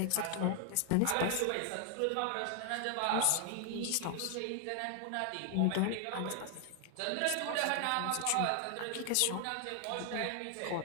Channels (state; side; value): different; both; correlation 0.00